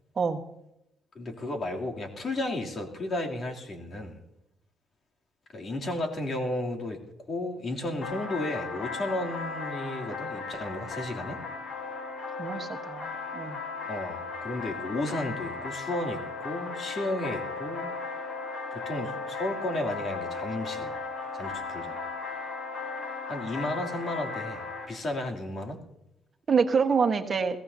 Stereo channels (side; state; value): both; normal; correlation 0.64